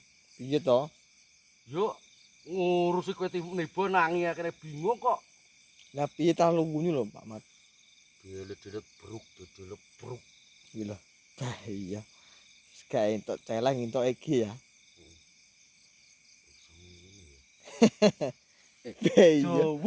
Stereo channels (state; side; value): identical; both; correlation 1.00